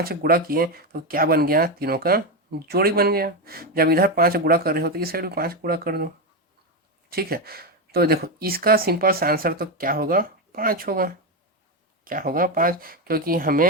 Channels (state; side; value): normal; both; correlation 0.10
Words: का गुणा किए तो क्या बन गया, तीनों का जोड़ी बन गया। जब इधर 5 गुणा कर रहे हो तो इस साइड भी 5 गुणा कर दो, ठीक है। तो देखो इसका सिंपल सा आंसर तो क्या होगा, 5 होगा, क्या होगा 5, क्योंकि